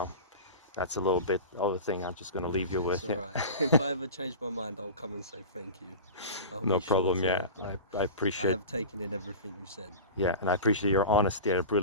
that's a little bit of the thing I'm just going to leave you with. It's all right. If I ever change my mind, I'll come and say thank you. No problem. Yeah, I appreciate. I have taken in everything you said. Yeah, and I appreciate your honesty. I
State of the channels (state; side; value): inverted; both; correlation -0.31